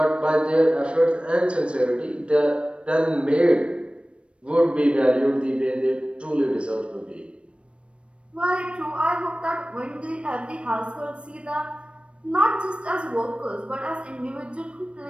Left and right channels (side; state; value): left; late; 0.059 ms